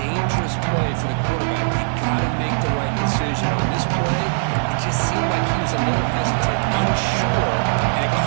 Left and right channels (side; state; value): left; silent; digital silence